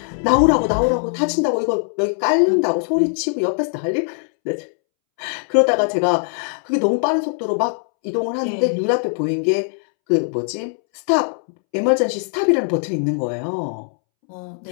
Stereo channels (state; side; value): silent; right; 66 dB below the other